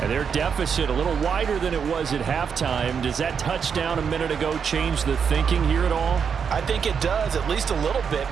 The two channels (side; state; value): left; quieter; 6.7 dB